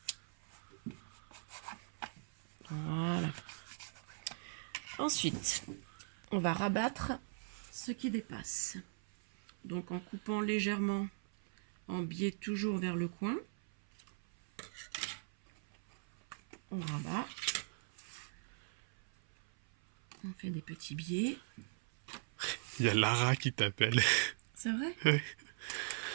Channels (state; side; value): silent; left; 51 dB below the other